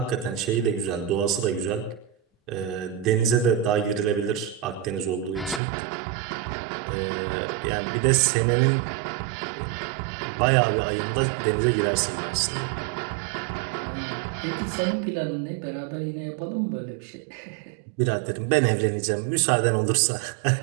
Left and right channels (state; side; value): drops out; left; at 5.6 s